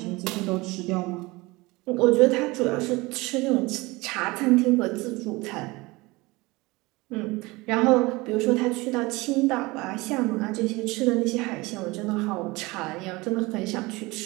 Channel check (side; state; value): left; quieter; 22.6 dB